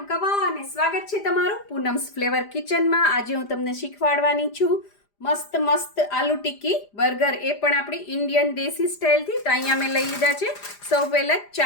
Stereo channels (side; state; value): right; late; 5.0 ms